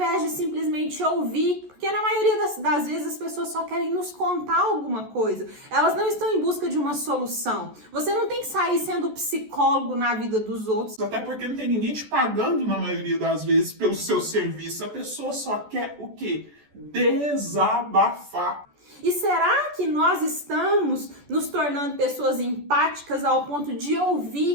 de simplesmente ouvir, porque na maioria das vezes as pessoas só querem nos contar alguma coisa, elas não estão em busca de uma solução. Você não tem que sair sendo psicólogo na vida dos outros. Até porque não tem ninguém te pagando na maioria das vezes pelo seu serviço. A pessoa só quer o quê? Desabafar. E será que nós estamos nos tornando pessoas empáticas ao ponto de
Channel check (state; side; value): late; left; 14 ms